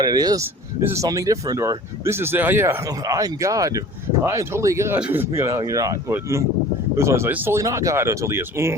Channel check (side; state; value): both; normal; correlation 0.44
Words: it is. This is something different, or this is, I'm God. I'm totally God. You're not. But this one's like, it's totally not God until he is.